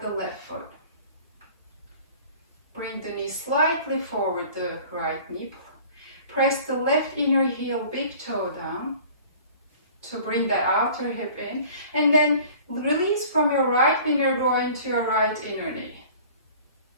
the left foot. Bring the knee slightly forward, the right knee. Press the left inner heel, big toe down to bring that outer hip in, and then release from your right inner groin to your right inner knee.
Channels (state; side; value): inverted; both; correlation -0.47